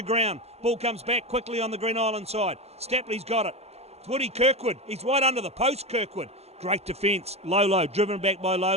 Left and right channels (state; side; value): late; left; 0.30 ms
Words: ground. Ball comes back quickly on the Green Island side. Stapley's got it. It's Woody Kirkwood. He's right under the post, Kirkwood. Great defence. Lolo, driven back by